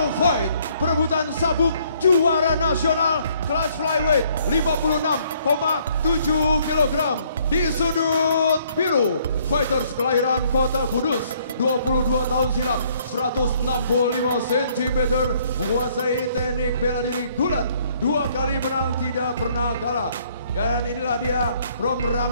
fight, perebutan sabuk juara nasional kelas flyweight 56,7 kg. Di sudut biru, fighters kelahiran Kota Kudus, 22 tahun silam, 165 cm, menguasai teknik bela diri gulat, 2 kali menang tidak pernah kalah. Dan inilah dia from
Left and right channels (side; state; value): both; inverted; correlation -0.65